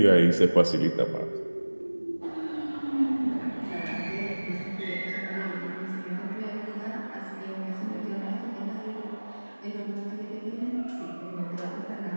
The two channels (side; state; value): both; inverted; correlation -1.00